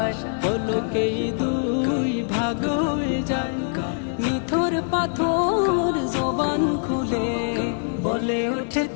পলকেই দুই ভাগ হয়ে যায় নিথর পাথর জবান খুলে বলে ওঠে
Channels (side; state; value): right; silent; digital silence